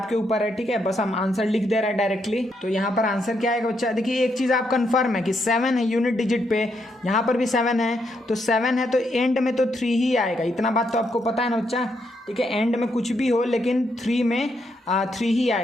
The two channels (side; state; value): both; normal; correlation 0.78